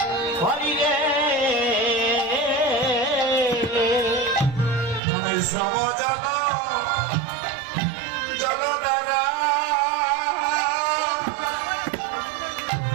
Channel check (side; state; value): left; drops out; at 5.0 s